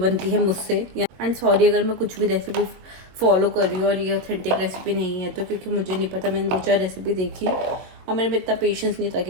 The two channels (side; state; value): left; late; 22 ms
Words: है मुझसे। एंड सॉरी अगर मैं कुछ भी रेसिपी फॉलो कर रही हूँ और ये ऑथेंटिक रेसिपी नहीं है तो, क्योंकि मुझे नहीं पता, मैंने 2-4 रेसिपी देखी और मेरे में इतना पेशेंस नहीं था